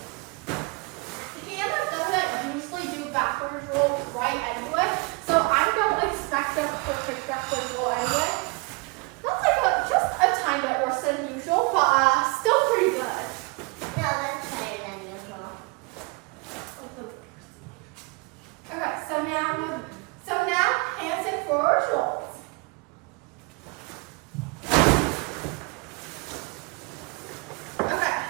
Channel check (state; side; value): quieter; left; 30.1 dB